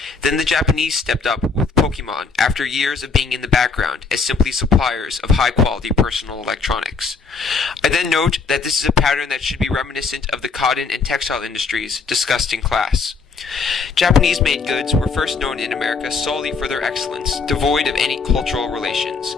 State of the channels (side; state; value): right; quieter; 4.8 dB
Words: then the Japanese stepped up with Pokemon after years of being in the background as simply suppliers of high-quality personal electronics. I then note that this is a pattern that should be reminiscent of the cotton and textile industries discussed in class. Japanese-made goods were first known in America solely for their excellence, devoid of any cultural relations.